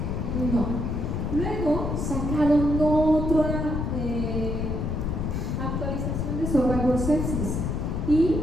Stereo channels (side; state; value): left; noise; rumble, 1 dB below the sound